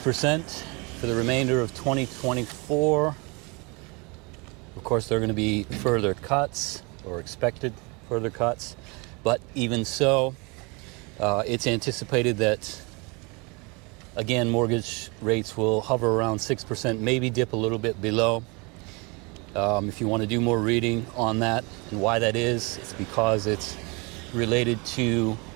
for the remainder of 2024. Of course, there are going to be further cuts, or expected further cuts, but even so, it's anticipated that, again, mortgage rates will hover around 6%, maybe dip a little bit below. If you want to do more reading on that and why that is, it's because it's related to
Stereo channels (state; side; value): quieter; left; 29.3 dB